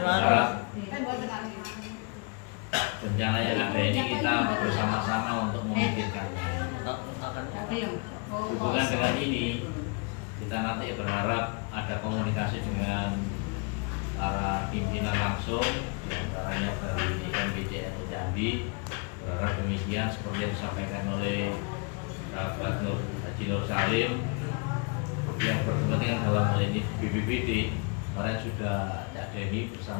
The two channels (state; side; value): quieter; right; 34.6 dB